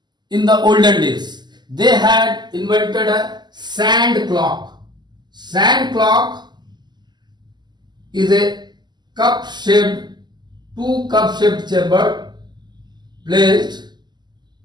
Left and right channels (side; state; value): left; late; 0.21 ms